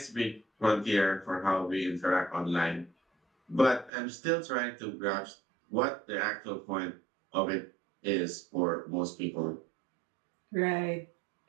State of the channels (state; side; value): drops out; left; at 3.9 s